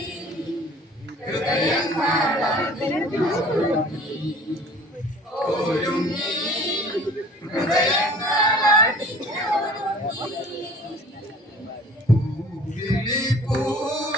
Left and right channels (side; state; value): both; normal; correlation 0.47